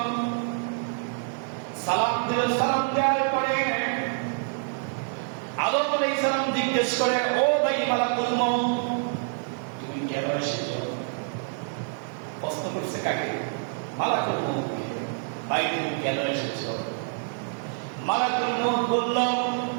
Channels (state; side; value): silent; left; 58 dB below the other